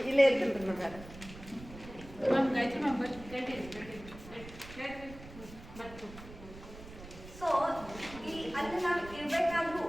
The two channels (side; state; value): right; noise; rumble, 16 dB below the sound